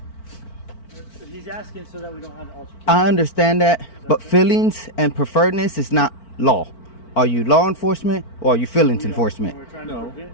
He's asking so that we don't have an altercation. I understand that, but feelings and preferredness is not law. Are you law enforcement or are you feelings enforcement? No,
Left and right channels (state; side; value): late; right; 4.4 ms